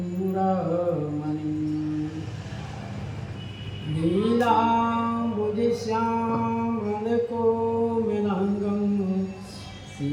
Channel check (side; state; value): both; identical; correlation 1.00